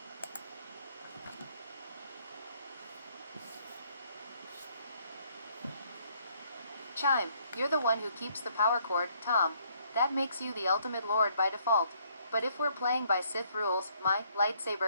Chime, you're the one who keeps the power cord, Tom. That makes you the ultimate lord by default. But if we're playing by Sith rules, my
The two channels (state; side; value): inverted; both; correlation -0.67